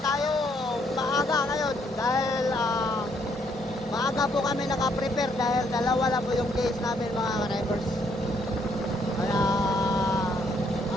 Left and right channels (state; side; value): normal; both; correlation 0.70